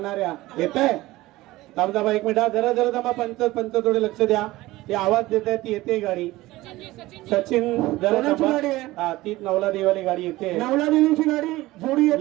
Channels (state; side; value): quieter; left; 18.2 dB